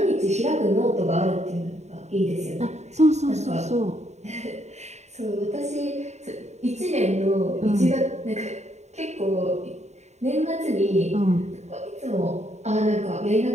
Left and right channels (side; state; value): left; late; 0.32 ms